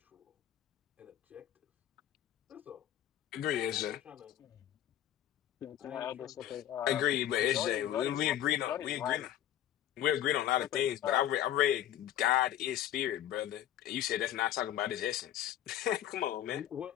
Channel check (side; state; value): right; quieter; 11.6 dB